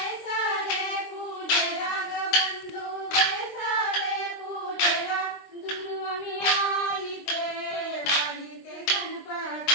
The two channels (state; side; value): late; right; 23 ms